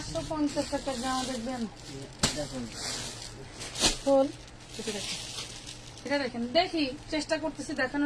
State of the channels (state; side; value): identical; both; correlation 1.00